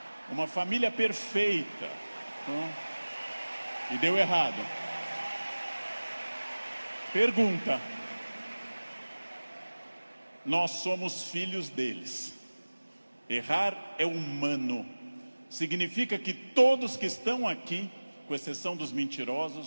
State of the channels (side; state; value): both; inverted; correlation -1.00